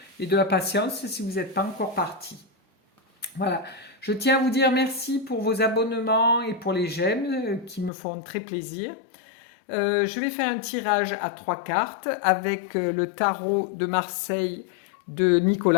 et de la patience si vous n'êtes pas encore parti. Voilà, je tiens à vous dire merci pour vos abonnements et pour les j'aime qui me font très plaisir. Je vais faire un tirage à 3 cartes avec le tarot de Marseille de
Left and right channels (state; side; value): drops out; right; at 7.9 s